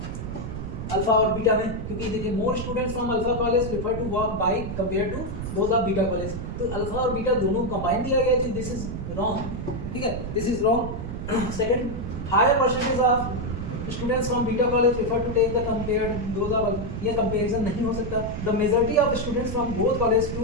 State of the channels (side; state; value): right; noise; rumble, 6 dB below the sound